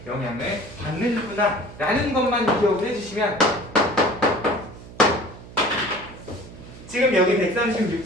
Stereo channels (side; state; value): right; noise; hum, 17 dB below the sound